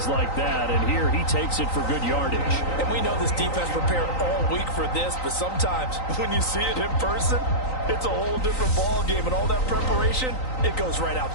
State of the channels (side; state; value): right; late; 3.9 ms